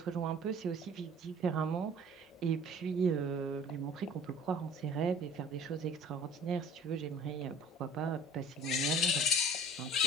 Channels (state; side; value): normal; both; correlation 0.49